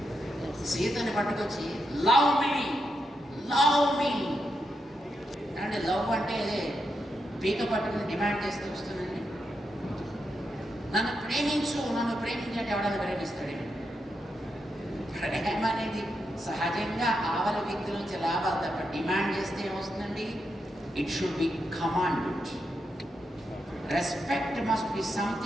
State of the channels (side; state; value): both; normal; correlation 0.84